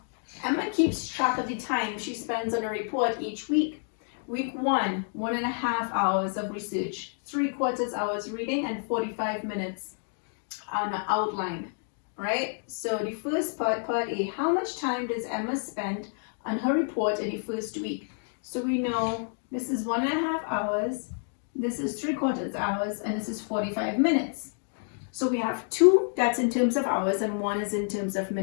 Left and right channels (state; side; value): silent; right; 59 dB below the other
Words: Emma keeps track of the time she spends on a report each week. Week 1, 1.5 hours of research, 3/4 hours reading, and 45 minutes on an outline, right? So the first part, part A, how much time does Emma spend on her report in the first week? So we know this is 1.5 hours, this is 3/4 hours, and this is 45 minutes. So we have 2 that's in terms of hours and 1 is in terms of